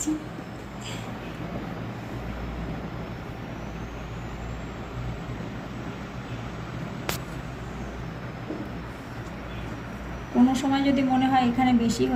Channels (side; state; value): both; identical; correlation 1.00